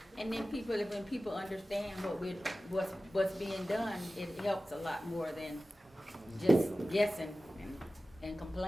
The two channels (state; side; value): normal; both; correlation 0.96